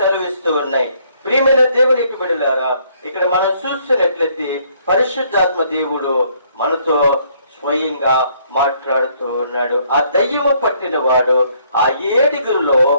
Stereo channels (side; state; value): both; inverted; correlation -0.66